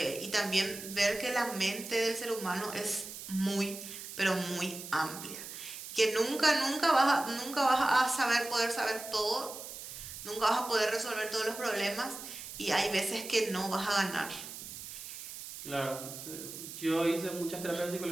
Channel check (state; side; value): noise; right; hiss, 10 dB below the sound